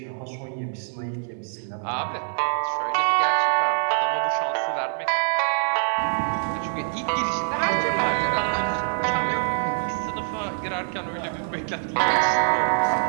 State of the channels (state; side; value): silent; left; 61 dB below the other